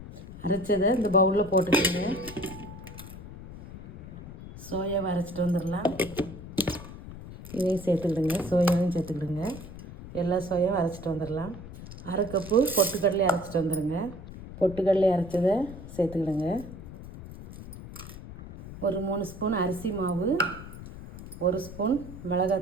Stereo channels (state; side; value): noise; left; rumble, 13 dB below the sound